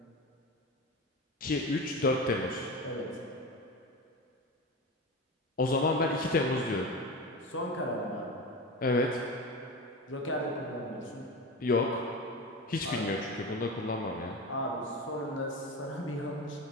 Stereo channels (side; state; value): both; normal; correlation 0.26